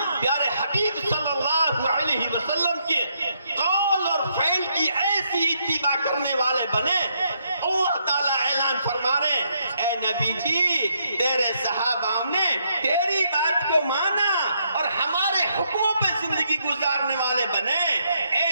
پیارے حبیب صلی اللہ علیہ وسلم کے قول اور فعل کی ایسی اتباع کرنے والے بنے. اللہ تعالیٰ اعلان فرما رہے اے نبی جی تیرے صحابہ نے تیری بات کو مانا اور ہمارے حکموں پہ زندگی گزارنے والے بنے. اے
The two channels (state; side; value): inverted; both; correlation -0.75